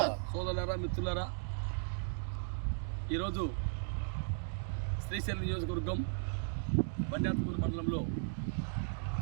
సోదరులారా, మిత్రులారా, ఈరోజు శ్రీశైలం నియోజకవర్గం బండాత్పూర్ మండలంలో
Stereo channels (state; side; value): silent; left; digital silence